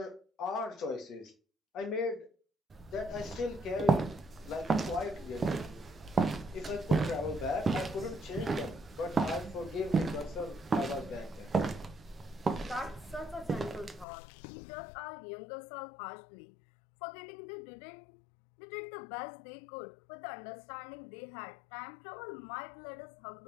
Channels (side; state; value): right; drops out; at 14.1 s